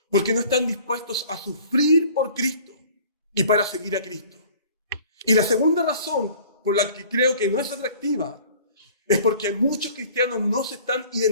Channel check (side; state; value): both; inverted; correlation -0.49